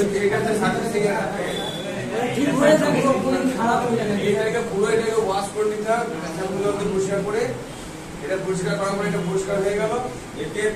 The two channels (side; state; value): both; identical; correlation 1.00